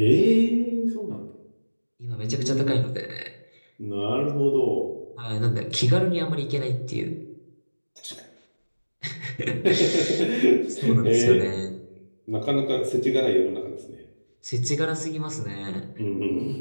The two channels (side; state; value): both; inverted; correlation -1.00